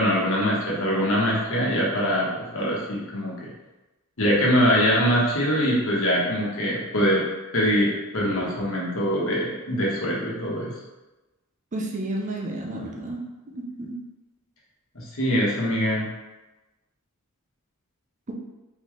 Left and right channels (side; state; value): both; normal; correlation 0.34